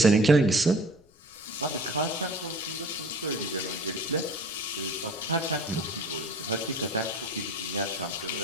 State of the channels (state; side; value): noise; left; rumble, 30 dB below the sound